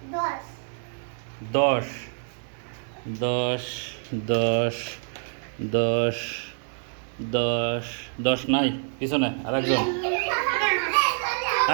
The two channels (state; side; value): silent; left; 57 dB below the other